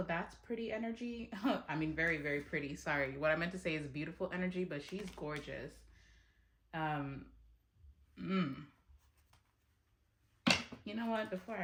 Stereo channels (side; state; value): both; identical; correlation 1.00